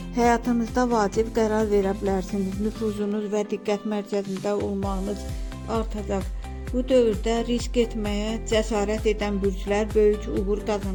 Həyatınızda vacib qərar verə bilərsiniz. Nüfuzunuz və diqqət mərkəzində olmağınız artacaq. Bu dövrdə risk etməyə cəsarət edən bürclər böyük uğur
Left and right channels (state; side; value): identical; both; correlation 1.00